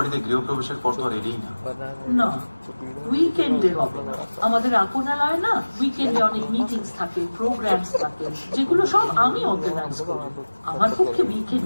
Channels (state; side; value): inverted; both; correlation -1.00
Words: গৃহপ্রবেশের পর তো আর এলেই না। না, উইকেন্ডে হবে না। আমাদের আপনালয় না, উইকেন্ডে অনেক মিটিংস থাকে, প্রোগ্রামস থাকে, যেগুলো সব আমি অর্গানাইজ করি। আমার পক্ষে